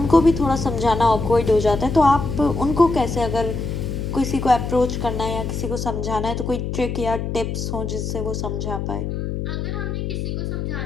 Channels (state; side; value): noise; left; hum, 3 dB below the sound